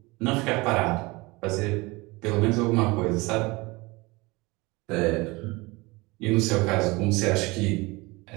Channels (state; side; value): quieter; left; 23.8 dB